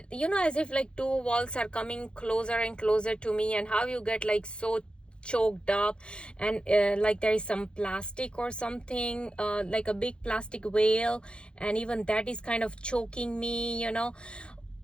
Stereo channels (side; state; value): right; late; 0.054 ms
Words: like two walls are coming closer and closer to me, and how you get like so choked up, and like there is some plastic or something, like a big plastic whale, and even that is kind of choking me.